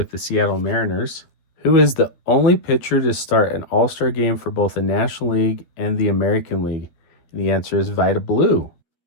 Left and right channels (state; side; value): late; right; 12 ms